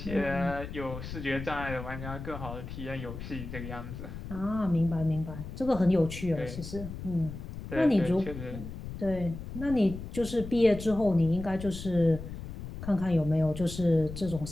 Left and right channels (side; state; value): left; noise; rumble, 10 dB below the sound